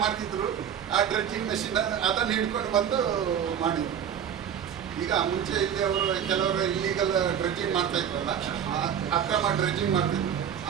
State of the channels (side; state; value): left; quieter; 8.7 dB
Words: ಮಾಡ್ತಿದ್ರು, ಆ ಡ್ರೆಡ್ಜಿಂಗ್ ಮೆಷಿನ್ ಅದನ್ನು ಹಿಡ್ಕೊಂಡು ಬಂದು ಮಾಡಿದ್ರು. ಈಗ ಮುಂಚೆ ಇಲ್ಲಿ ಅವರು ಕೆಲವರು ಇಲ್ಲೀಗಲ್ ಡ್ರೆಡ್ಜಿಂಗ್ ಮಾಡ್ತಾ ಇದ್ರಲ್ಲ, ಅಕ್ರಮ ಡ್ರೆಡ್ಜಿಂಗ್ ಮಾಡ್ತಿದ್ರು,